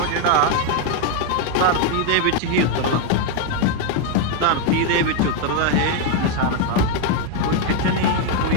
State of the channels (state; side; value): different; both; correlation 0.01